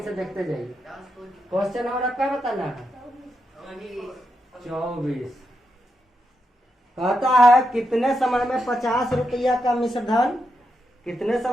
से देखते जाइए। क्वेश्चन और क्या बताना है 24 कहता है कितने समय में 50 रुपया का मिश्र धन कितने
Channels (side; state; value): both; normal; correlation 0.84